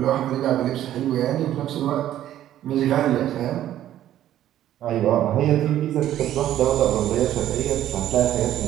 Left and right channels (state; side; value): quieter; left; 12.2 dB